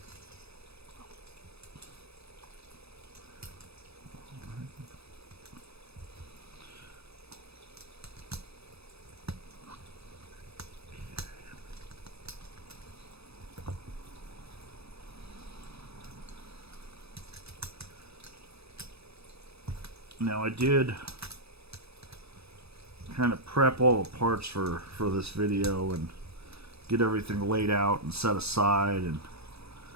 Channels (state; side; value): late; left; 0.78 ms